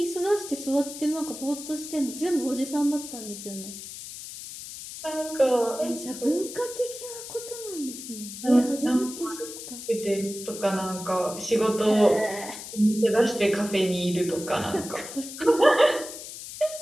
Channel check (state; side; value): noise; left; hiss, 11 dB below the sound